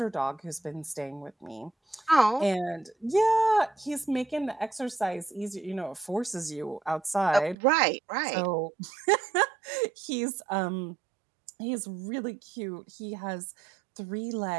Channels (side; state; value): left; drops out; at 7.6 s